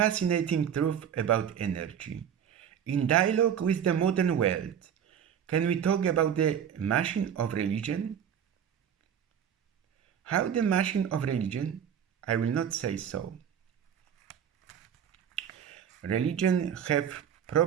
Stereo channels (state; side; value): quieter; left; 8.7 dB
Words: truth about energy. In dialogue with the modern world, can we talk about the machine of religion? How the machine of religion? I will not say so. Religion have